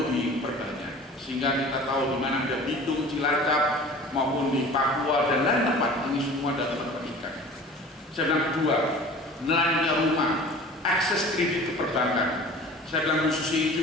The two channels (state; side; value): normal; both; correlation 0.42